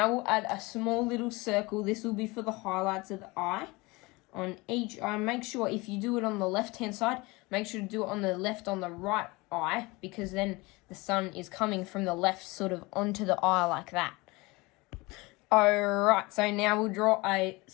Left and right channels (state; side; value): quieter; right; 23.7 dB